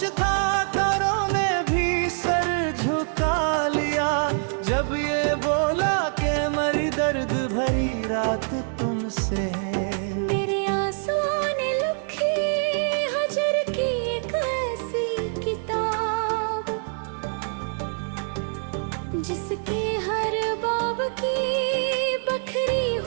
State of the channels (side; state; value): left; silent; 62 dB below the other